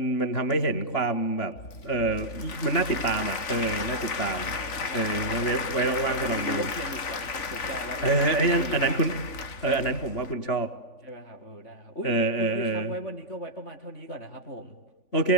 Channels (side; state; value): right; late; 3.5 ms